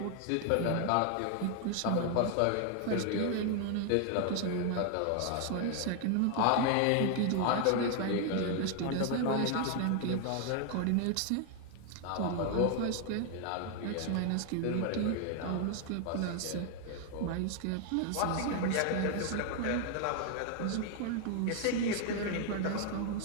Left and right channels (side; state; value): both; different; correlation 0.00